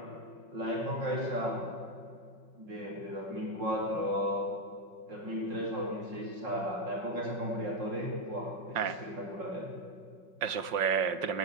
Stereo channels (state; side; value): late; left; 5.7 ms